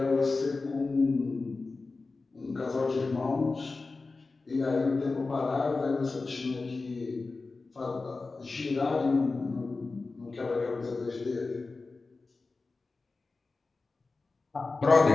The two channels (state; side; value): quieter; right; 3.8 dB